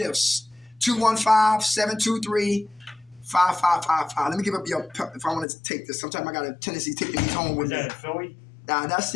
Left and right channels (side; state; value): right; drops out; at 5.5 s